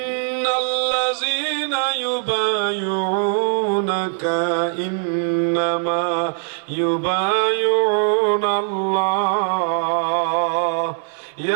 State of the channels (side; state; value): left; silent; 60 dB below the other